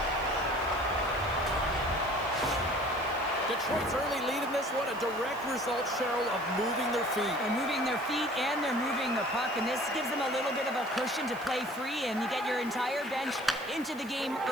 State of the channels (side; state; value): right; noise; hiss, 22 dB below the sound